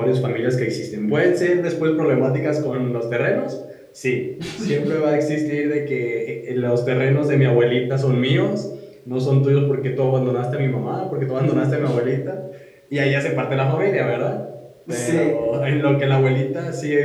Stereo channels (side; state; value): both; identical; correlation 1.00